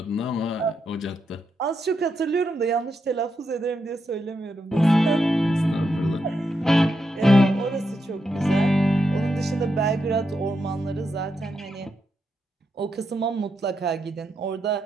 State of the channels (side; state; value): both; normal; correlation 0.83